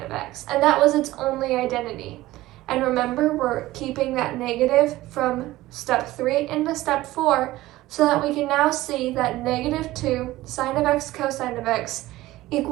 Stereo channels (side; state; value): left; quieter; 17.1 dB